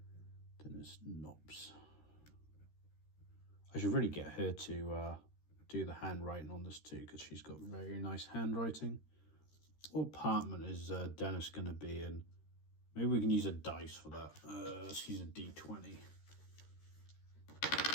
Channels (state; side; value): late; right; 13 ms